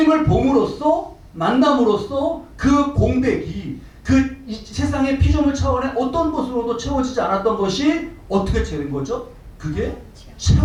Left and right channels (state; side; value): identical; both; correlation 1.00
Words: 봄으로써 만남으로써 그 공백이 이 세상의 피조물 차원의 어떤 것으로도 채워지지 않았던 것이 어떻게 되는 거죠? 그게